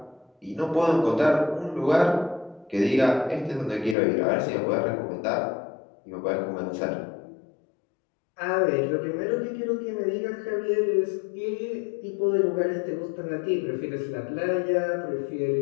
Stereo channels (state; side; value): drops out; right; at 4.0 s